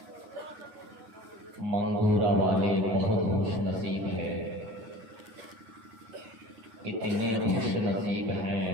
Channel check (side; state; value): left; late; 11 ms